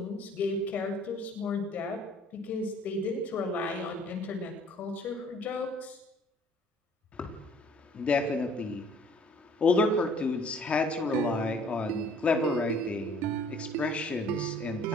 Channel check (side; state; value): both; normal; correlation 0.56